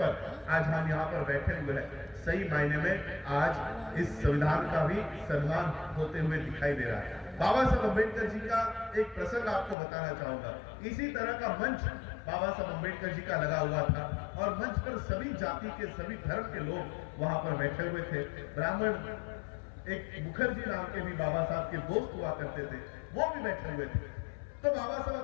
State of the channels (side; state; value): right; drops out; at 9.8 s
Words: आज हम यहाँ पर बैठे हुए हैं, सही मायने में आज इस संविधान का भी सम्मान होते हुए दिखाई दे रहा है। बाबा साहब अम्बेडकर जी का एक प्रसंग आपको बताना चाहूंगा। इसी तरह का मंच बाबा साहब अम्बेडकर जी का लगा हुआ था और मंच पर सभी जाति के, सभी धर्म के लोग वहां पर बैठे हुए थे। ब्राह्मण एक मुखर्जी नाम के भी बाबा साहब के दोस्त हुआ करते थे, वो भी बैठे हुए थे। तो बाबा साहब